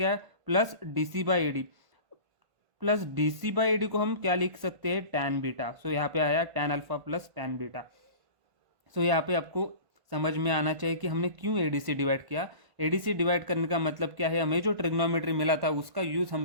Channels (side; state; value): left; late; 1.5 ms